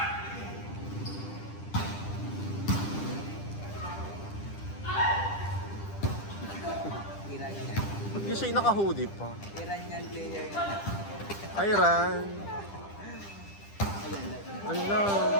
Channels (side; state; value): right; late; 10 ms